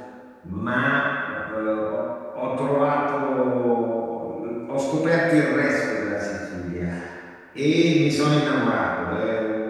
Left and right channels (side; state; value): both; identical; correlation 1.00